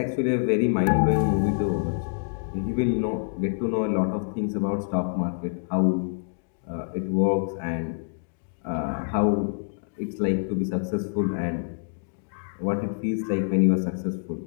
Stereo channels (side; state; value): right; silent; digital silence